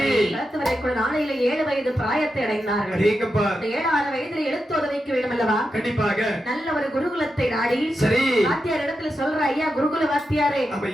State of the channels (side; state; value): both; normal; correlation 0.88